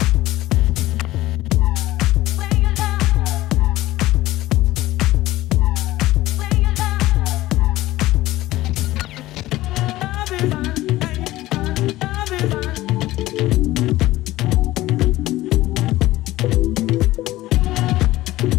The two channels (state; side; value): quieter; right; 16.9 dB